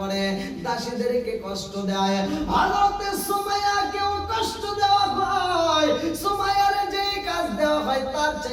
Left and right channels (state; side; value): identical; both; correlation 1.00